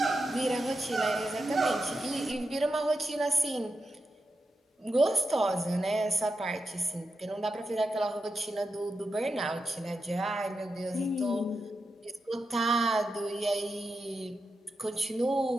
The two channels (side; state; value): both; normal; correlation 0.88